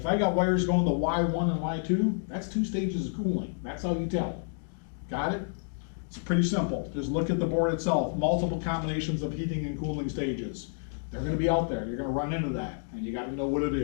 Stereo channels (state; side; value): silent; right; digital silence